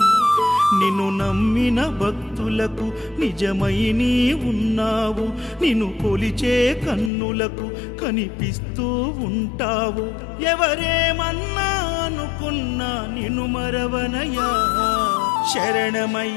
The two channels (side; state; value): right; drops out; at 7.1 s